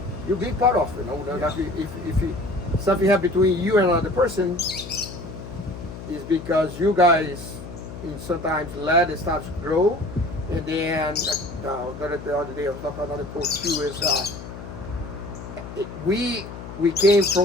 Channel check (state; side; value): noise; left; hum, 12 dB below the sound